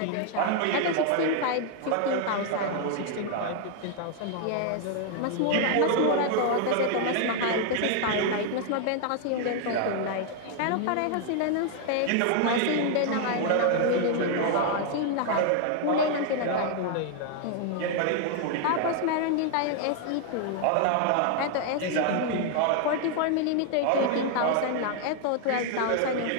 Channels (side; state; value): both; different; correlation 0.00